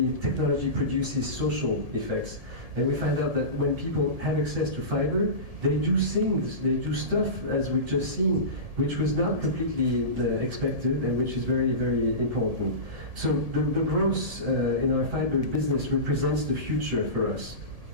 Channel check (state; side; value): late; left; 1.7 ms